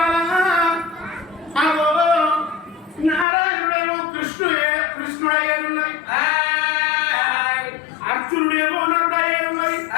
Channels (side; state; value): right; drops out; at 3.2 s